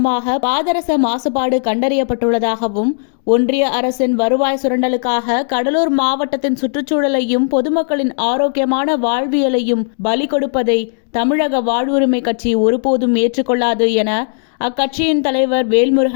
பாதரச மாசுபாடு கண்டறியப்பட்டுள்ளதாகவும், ஒன்றிய அரசின் வருவாய் சுரண்டலுக்காக கடலூர் மாவட்டத்தின் சுற்றுச்சூழலையும் பொதுமக்களின் ஆரோக்கியமான வாழ்வியலையும் பலி கொடுப்பதை தமிழக வாழ்வுரிமை கட்சி ஒருபோதும் ஏற்றுக்கொள்ளாது என அக்கட்சியின் தலைவர்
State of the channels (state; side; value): silent; right; digital silence